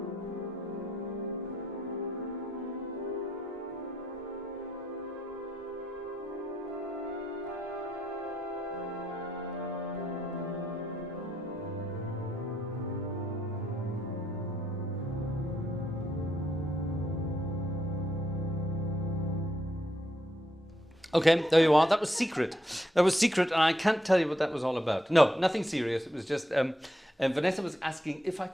Okay, there you are. That was secret. That was secret, and I can't tell you what that was all about. No, nothing serious. It was just Vanessa was asking if I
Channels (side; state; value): both; normal; correlation 0.78